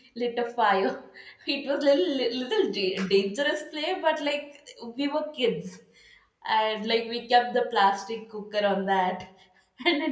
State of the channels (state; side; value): identical; both; correlation 1.00